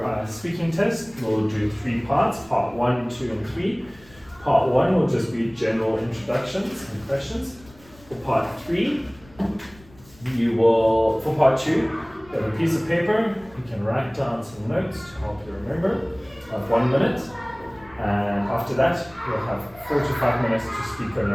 speaking test. We'll do 3 parts, part 1, 2, and 3. Part 1 will just be general introductions and questions. For part 3, for part 2, you have a piece of paper. You can write down some notes to help you remember. You have 1 minute. And after that, you'll have 4 to 5 minutes to speak on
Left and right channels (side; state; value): left; noise; rumble, 25 dB below the sound